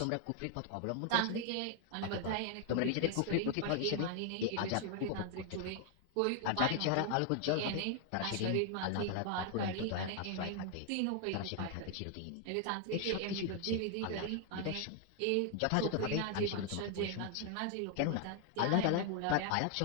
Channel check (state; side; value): different; both; correlation 0.00